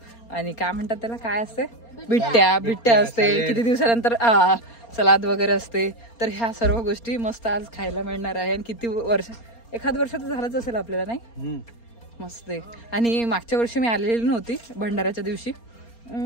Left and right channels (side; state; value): right; late; 4.3 ms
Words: काय म्हणतात त्याला, काय असते, बिट्ट्या असते. किती दिवसानंतर सलाद वगैरे असते. तर ह्या सर्व गोष्टी मस्त आज खायला मिळणार आहे. आणि किती वर्ष, एखाद वर्ष तर झालंच असेल आपल्याला, नाही मस्त आहे. आणि मागच्या वर्षी मी आलेली नव्हती भंडाऱ्याच्या दिवशी.